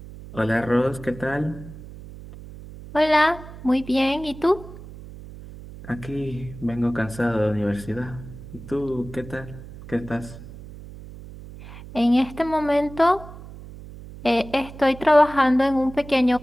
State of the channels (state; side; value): noise; right; hum, 15 dB below the sound